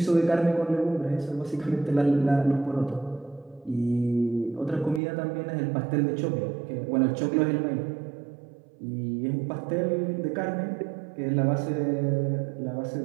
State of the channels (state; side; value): drops out; left; at 5.0 s